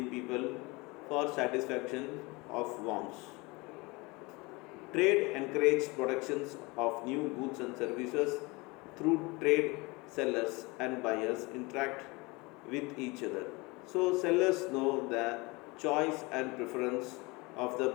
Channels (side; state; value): right; quieter; 25.1 dB